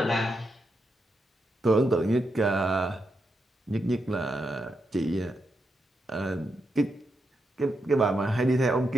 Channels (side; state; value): both; normal; correlation 0.84